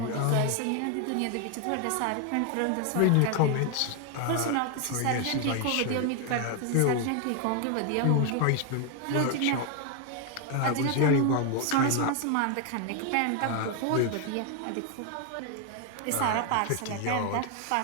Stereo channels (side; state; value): both; different; correlation 0.01